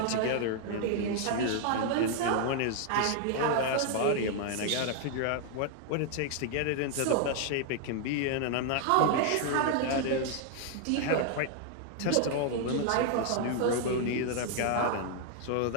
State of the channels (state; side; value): different; both; correlation 0.00